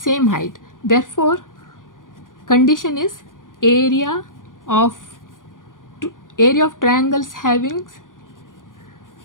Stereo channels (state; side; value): late; right; 0.89 ms